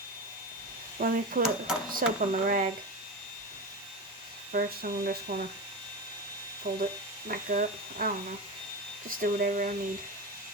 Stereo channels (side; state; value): both; normal; correlation 0.22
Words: Let me put soap on the rag. First, I'm just going to fold it back up. I don't know. Just do whatever I need.